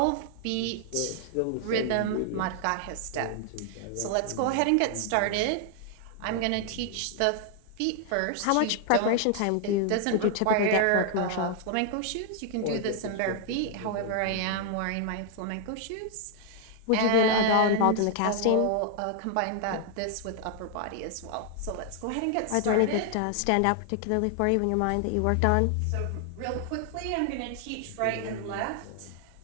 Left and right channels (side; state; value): both; different; correlation 0.00